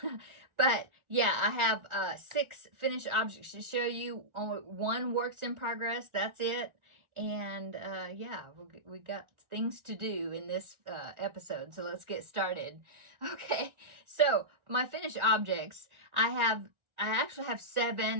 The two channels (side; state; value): left; late; 1.4 ms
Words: But yeah, I have 6 finished objects to show you. Only one works in progress, that's it. And yeah, we got things to do in this episode, so let's get started. Okay, so my finished objects, I actually have